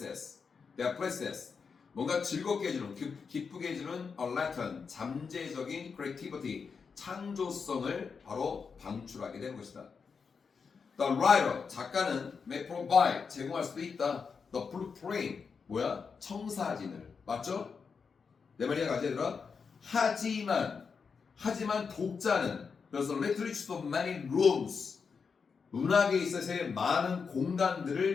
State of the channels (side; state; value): right; quieter; 5.6 dB